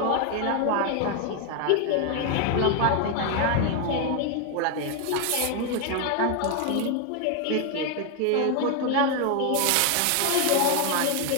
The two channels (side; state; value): both; different; correlation 0.01